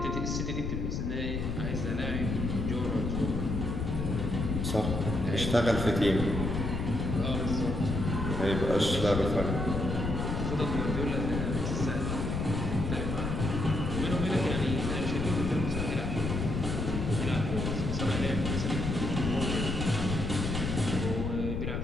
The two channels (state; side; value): noise; left; rumble, 2 dB below the sound